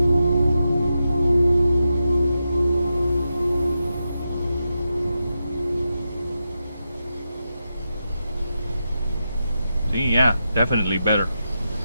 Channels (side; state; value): both; inverted; correlation -0.88